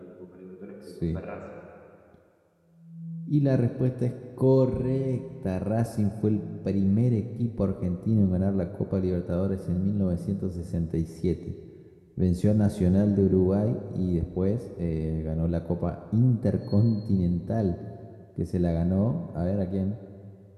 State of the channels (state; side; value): identical; both; correlation 1.00